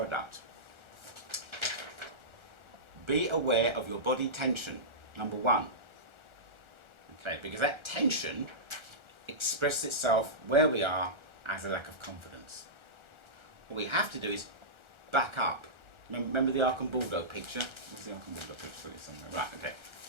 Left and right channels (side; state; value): left; late; 1.4 ms